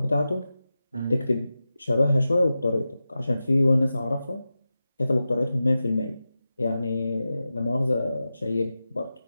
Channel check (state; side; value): inverted; both; correlation -0.93